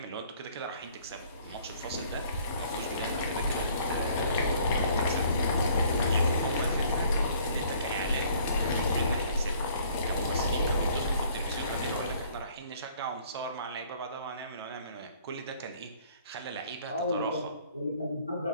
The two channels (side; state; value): both; inverted; correlation -0.58